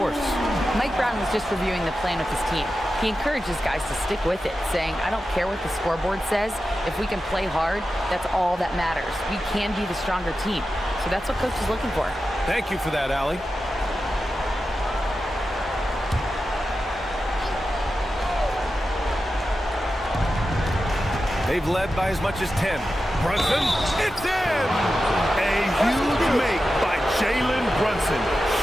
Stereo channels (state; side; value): normal; both; correlation 0.92